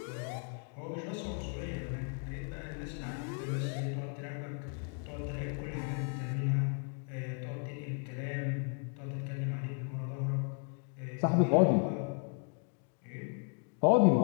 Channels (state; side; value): quieter; right; 39.5 dB